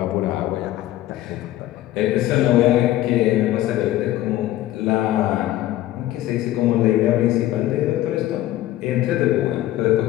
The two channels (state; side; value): quieter; right; 14.7 dB